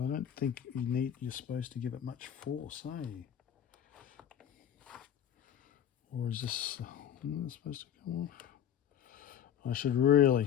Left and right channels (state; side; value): quieter; right; 9.5 dB